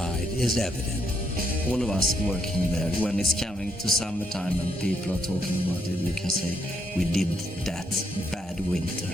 is evident. All of us working there, when it's coming to summertime and people are talking about it, we can say we did that bad winter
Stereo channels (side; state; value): both; normal; correlation 0.75